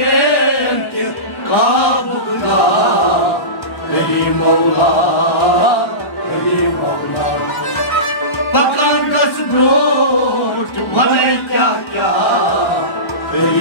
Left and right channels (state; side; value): late; right; 1.1 ms